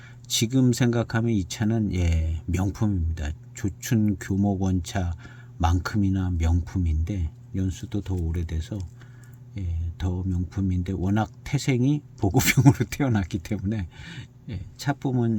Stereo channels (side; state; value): both; identical; correlation 1.00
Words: 지금 생각하면 이 차는 명품입니다. 조춘 교목원차만큼이나 명품인데 연수도 더 오래돼서 더 명품인데 워낙 태생이 보급형으로 태어났기 때문에